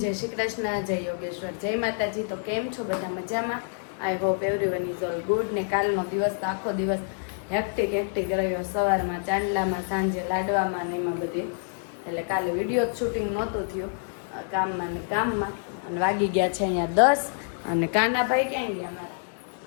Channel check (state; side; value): silent; right; digital silence